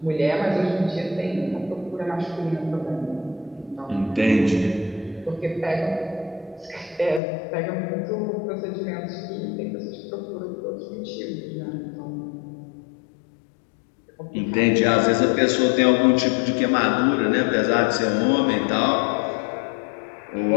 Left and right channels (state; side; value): drops out; right; at 7.2 s